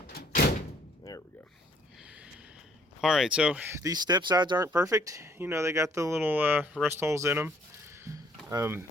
there we go. All right, so these step sides aren't perfect. You know, they got the little rust holes in them.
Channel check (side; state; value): both; normal; correlation 0.63